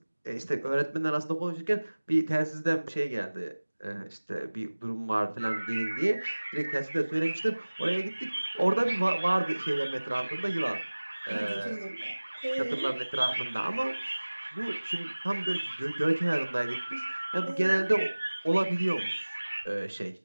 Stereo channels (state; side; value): inverted; both; correlation -1.00